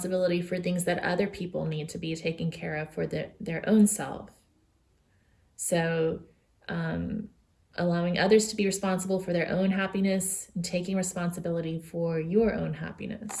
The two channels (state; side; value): identical; both; correlation 1.00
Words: for things that other people need to be taken care of for their own self. So allowing others to be responsible for their own happiness and taking responsibility for your own